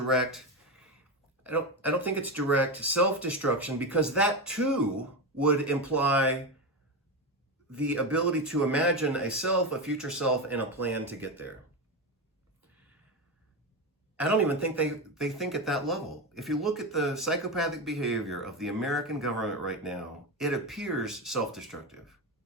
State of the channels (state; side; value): normal; both; correlation 0.16